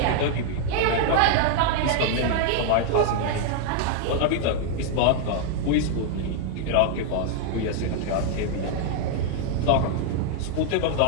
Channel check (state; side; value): different; both; correlation 0.00